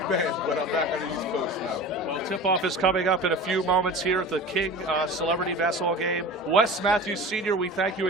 man, but I'm back on the East Coast now. Well, tip-off is coming up in a few moments here at the King Celebrity Basketball Game. Wes Matthews Sr., we thank you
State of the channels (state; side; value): normal; both; correlation 0.35